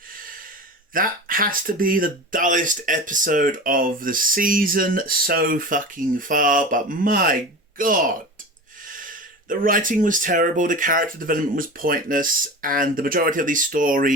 That has to be the dullest episode of the season so fucking far, but my god. The writing was terrible, the character development was pointless, and the majority of these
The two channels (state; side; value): normal; both; correlation 0.32